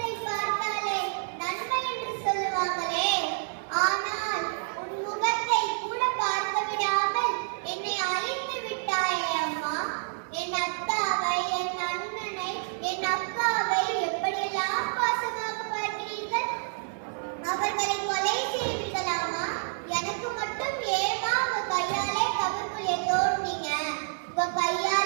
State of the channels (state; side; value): silent; left; 59 dB below the other